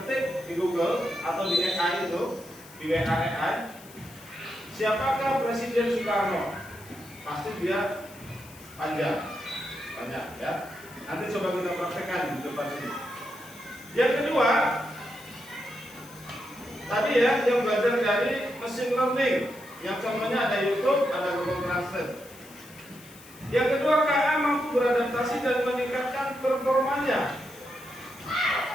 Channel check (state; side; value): noise; left; hiss, 21 dB below the sound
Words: di Google atau di AI itu, di WA AI, siapakah Presiden Soekarno? Pasti dia panjang, banyak ya. Nanti coba kita praktekkan di depan sini. Yang kedua, tadi ya yang belajar dari machine learning, yang contohnya ada YouTube, ada Google Translate. Yang kedua, KA mampu beradaptasi dan meningkatkan performanya.